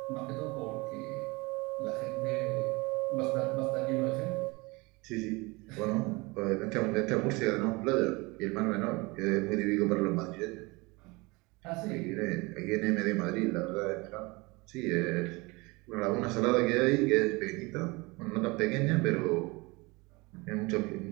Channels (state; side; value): quieter; left; 25.2 dB